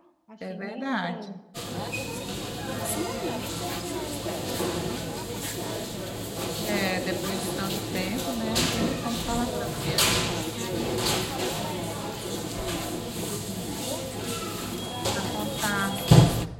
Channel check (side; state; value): both; identical; correlation 1.00